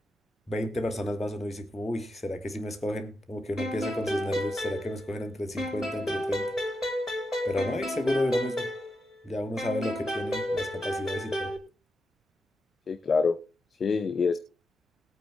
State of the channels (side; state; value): both; normal; correlation 0.87